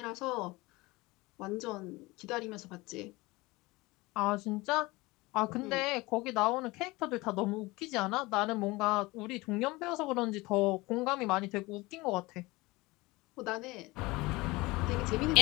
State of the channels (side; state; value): right; quieter; 22.1 dB